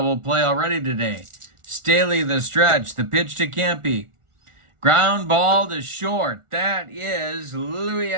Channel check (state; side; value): late; left; 1.4 ms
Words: play already today. Staley the stretch. The pitch to Campy. Ground ball to short. That is Louis